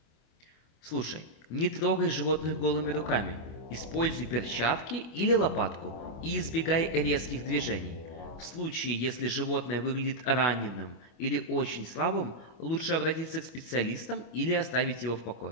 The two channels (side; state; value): right; late; 25 ms